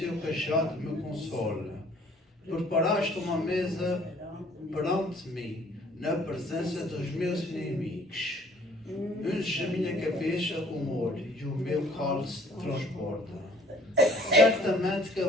cajado me consolam. Preparaste uma mesa perante mim, na presença dos meus inimigos. Unges a minha cabeça com óleo e o meu cálice transborda. Certamente que a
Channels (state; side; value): normal; both; correlation 0.56